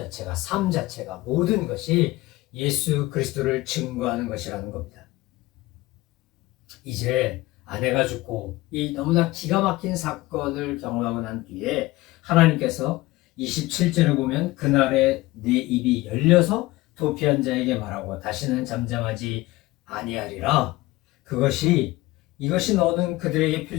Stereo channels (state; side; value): quieter; right; 19.3 dB